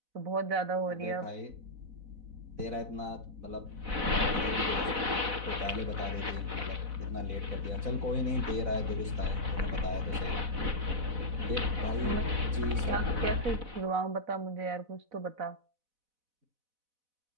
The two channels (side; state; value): left; late; 4.0 ms